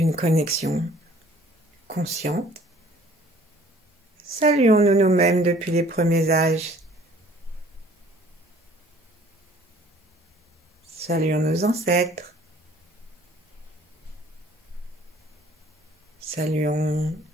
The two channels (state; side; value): normal; both; correlation 0.55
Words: connexion consciente, saluons-nous nous-mêmes depuis les premiers âges. Saluons nos ancêtres. Saluons